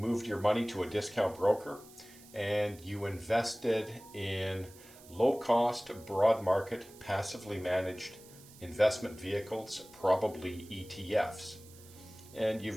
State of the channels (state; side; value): noise; right; hiss, 21 dB below the sound